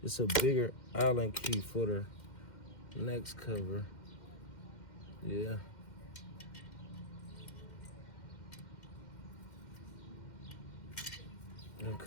It's a bigger Allen key for the next cover. Yeah.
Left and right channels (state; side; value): late; right; 2.1 ms